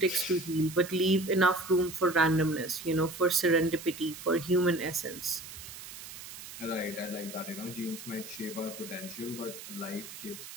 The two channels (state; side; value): noise; right; hiss, 13 dB below the sound